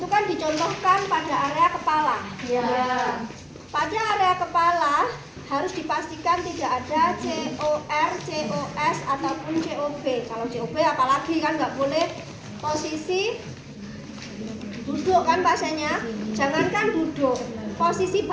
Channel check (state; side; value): identical; both; correlation 1.00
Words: kan dicontohkan pada area kepala. Ya. Pada area kepala harus dipastikan tidak ada COR, COS ataupun COB. Kalau COB apalagi kan nggak boleh posisi duduk kan pasiennya, jangankan duduk, posisi